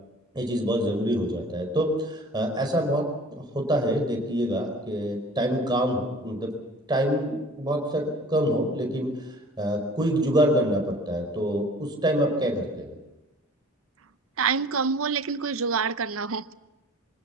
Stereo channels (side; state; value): both; normal; correlation 0.46